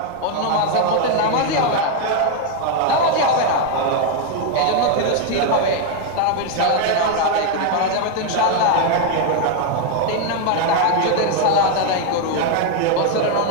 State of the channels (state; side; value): different; both; correlation 0.01